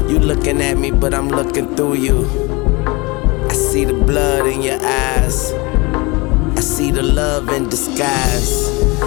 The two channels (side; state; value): right; quieter; 25.8 dB